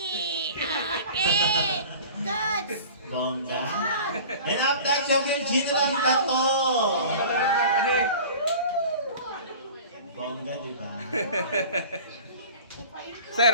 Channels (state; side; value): inverted; both; correlation -0.41